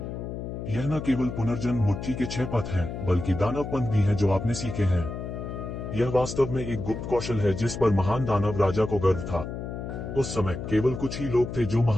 न केवल पुनर्जन्म मुट्ठी के 6 पथ हैं, बल्कि दानव पंथ भी हैं जो आपने सीखे हैं। यह वास्तव में एक गुप्त कौशल है जिस पर महान दानव राजा को गर्व था। उस समय केवल कुछ ही लोग थे जो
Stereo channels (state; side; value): noise; left; hum, 7 dB below the sound